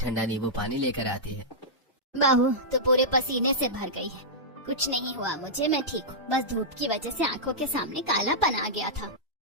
नींबू पानी लेकर आती है। बहू तो पूरे पसीने से भर गई है। कुछ नहीं हुआ मुझे, मैं ठीक हूँ, बस धूप की वजह से आंखों के सामने कालापन आ गया था।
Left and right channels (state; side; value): normal; both; correlation -0.11